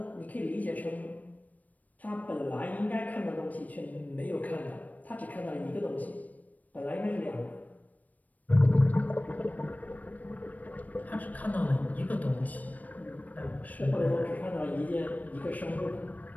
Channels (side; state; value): right; late; 0.076 ms